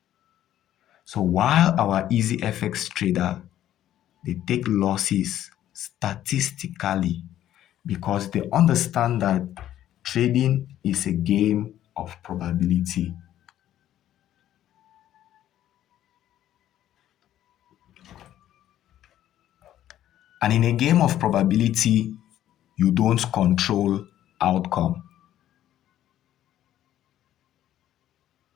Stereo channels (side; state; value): right; quieter; 12.2 dB